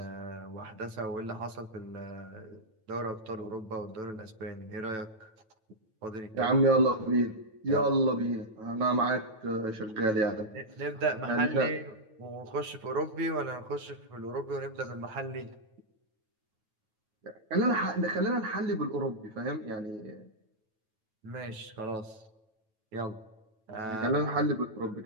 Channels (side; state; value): left; late; 9.1 ms